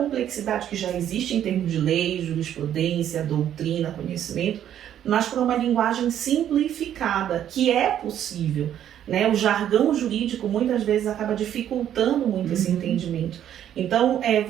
que já existe em termos de lei, jurisprudência, doutrina, conhecimento, mas para uma linguagem simplificada, que é possível. Né? O jargão jurídico muitas vezes acaba dificultando muito esse entendimento. Então,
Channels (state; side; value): quieter; left; 10.5 dB